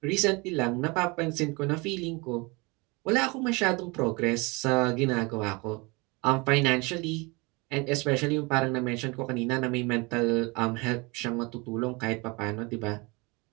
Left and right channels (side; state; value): left; quieter; 26.9 dB